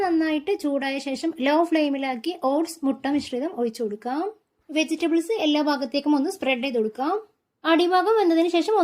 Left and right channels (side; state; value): both; identical; correlation 1.00